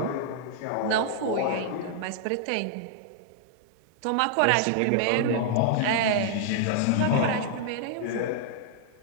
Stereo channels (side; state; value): both; different; correlation -0.01